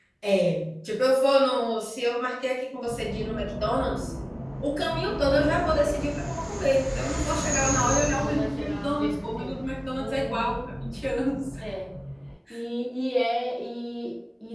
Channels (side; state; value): both; identical; correlation 1.00